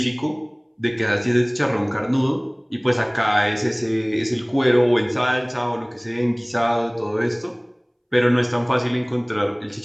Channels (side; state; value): both; identical; correlation 1.00